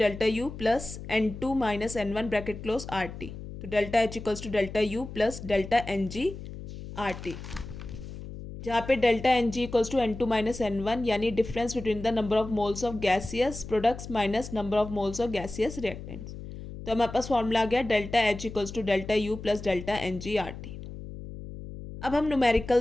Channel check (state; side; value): noise; left; hum, 11 dB below the sound